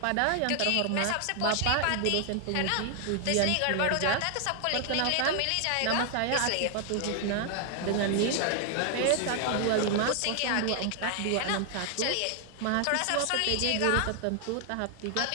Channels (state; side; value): different; both; correlation 0.00